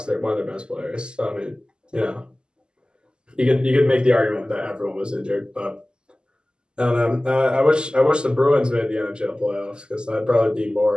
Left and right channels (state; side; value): late; left; 0.048 ms